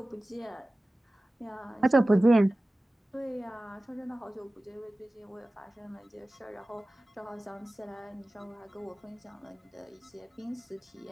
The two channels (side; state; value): both; normal; correlation 0.96